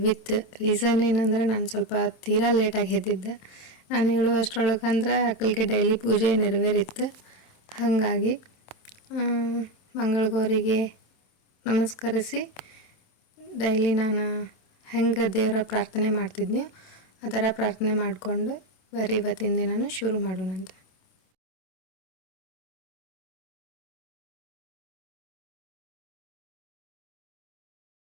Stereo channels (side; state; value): right; late; 26 ms